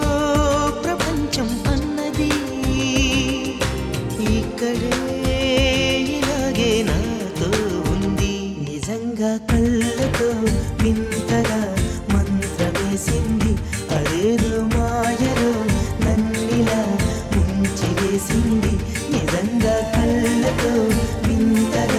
ప్రపంచం అన్నది, ఇక్కడే ఇలాగే నాతో ఉంది. నిజంగా కళ్ళతో వింతగా మంత్రమేసింది, అదేదో మాయలో నన్నిలా ముంచి వేసింది. నిజంగా కళ్ళతో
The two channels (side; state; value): both; identical; correlation 1.00